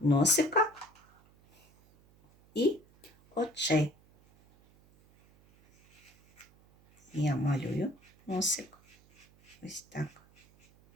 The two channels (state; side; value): noise; right; hum, 29 dB below the sound